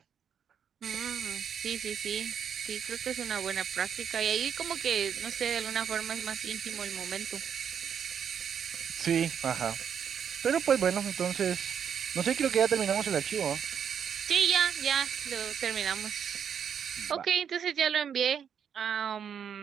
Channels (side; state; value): left; quieter; 7.9 dB